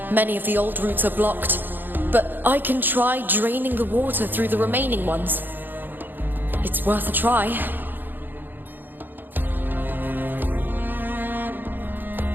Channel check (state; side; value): late; left; 0.091 ms